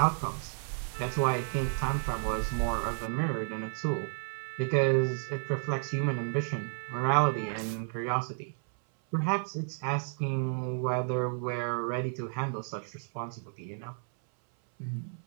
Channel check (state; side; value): silent; left; 57 dB below the other